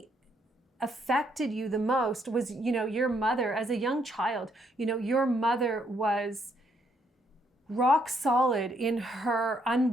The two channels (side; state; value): both; normal; correlation 0.72